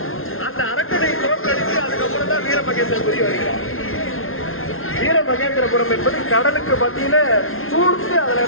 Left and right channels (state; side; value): late; right; 0.61 ms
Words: அந்த அரக்கனை தோற்கடித்து அதுக்கப்புறம் தான் வீரமகேந்திரபுரி வருகிறார். வீரமகேந்திரபுரம் என்பது கடலுக்கு மத்தியில சூழ்ந்து அந்த